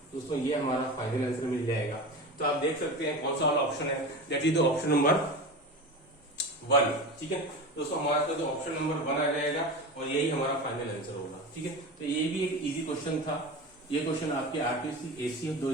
दोस्तों ये हमारा final answer मिल जाएगा। तो आप देख सकते हैं कौन सा वाला ऑप्शन है, that is the option number 1। ठीक है दोस्तों, हमारे पास जो ऑप्शन नंबर 1 आ जाएगा और यही हमारा फाइनल आंसर होगा। ठीक है, तो ये भी एक इजी क्वेश्चन था। ये क्वेश्चन आपके आरपीएससी एसीएफ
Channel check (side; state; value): both; normal; correlation 0.28